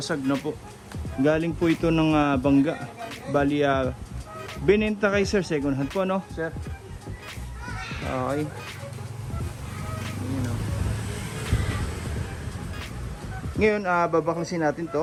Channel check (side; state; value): both; identical; correlation 1.00